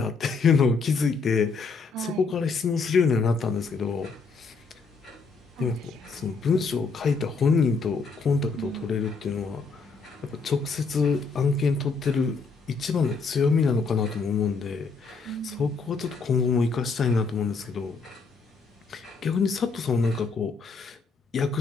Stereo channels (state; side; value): quieter; right; 4.6 dB